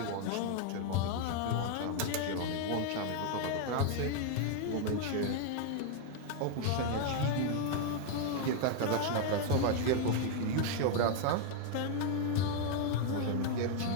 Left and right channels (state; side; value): different; both; correlation 0.00